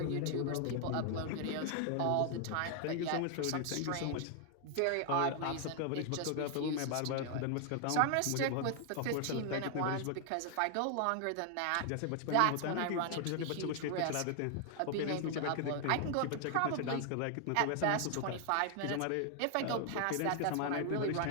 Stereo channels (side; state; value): both; different; correlation 0.00